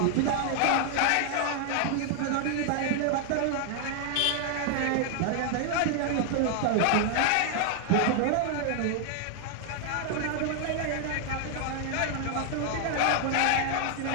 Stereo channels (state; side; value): different; both; correlation 0.00